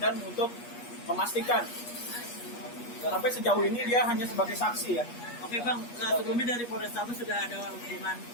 untuk memastikan. Sampai sejauh ini dia hanya sebagai saksi ya. Oke Bang, sebelumnya dari Polrestabes sudah ada hubungan,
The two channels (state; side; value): late; right; 8.4 ms